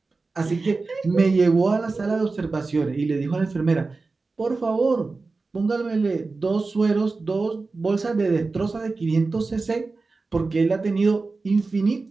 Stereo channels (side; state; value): left; quieter; 3.8 dB